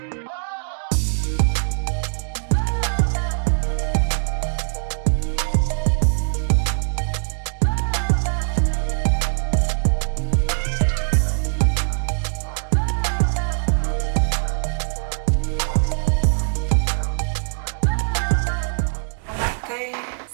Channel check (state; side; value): silent; left; digital silence